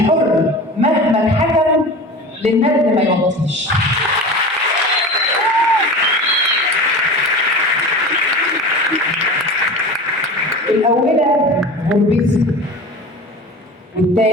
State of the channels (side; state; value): both; normal; correlation 0.33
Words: مهما اتحكم للند ما يوطيش. الأولى غربتي،